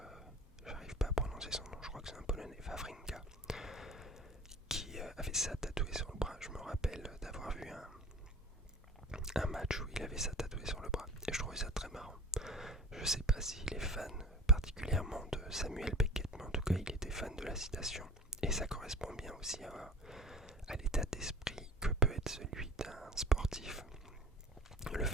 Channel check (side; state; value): both; normal; correlation 0.37